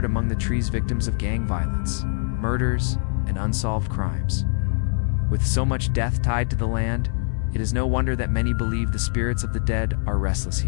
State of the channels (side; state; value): right; silent; digital silence